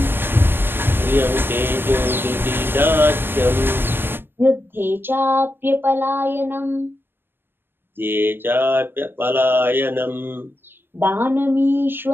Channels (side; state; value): left; late; 0.10 ms